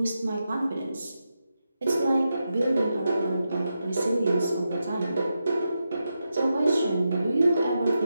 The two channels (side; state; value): both; inverted; correlation -0.87